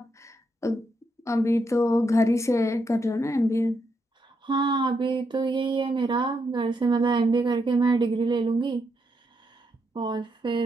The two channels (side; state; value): both; normal; correlation 0.80